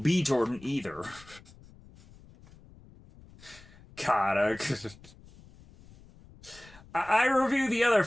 B. Jordan either. God, I review the other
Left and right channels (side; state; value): left; noise; rumble, 23 dB below the sound